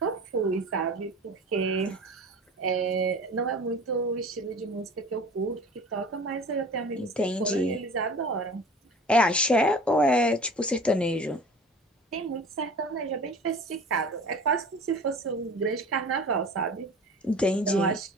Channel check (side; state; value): both; normal; correlation 0.40